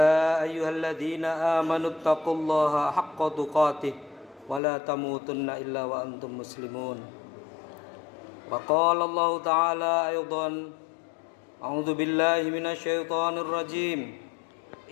أيها الذين آمنوا اتقوا الله حق تقاته ولا تموتن إلا وأنتم مسلمون وقال الله تعالى أيضا أعوذ بالله من الشيطان الرجيم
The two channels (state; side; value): drops out; right; at 4.6 s